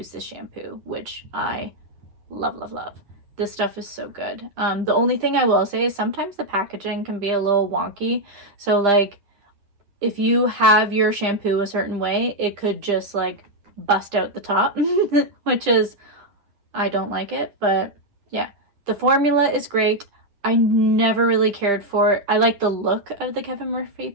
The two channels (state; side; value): late; left; 10 ms